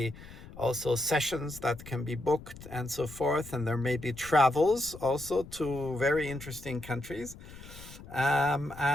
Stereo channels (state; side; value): noise; left; rumble, 16 dB below the sound